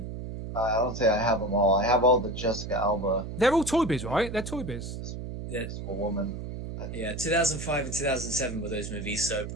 I don't say I have them all. I have all the Jessica Alba. They're all Toy Biz, right? They're Toy Biz. Yeah. A woman. Yeah, 2005 and 2007 were those movies, so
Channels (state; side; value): noise; right; hum, 7 dB below the sound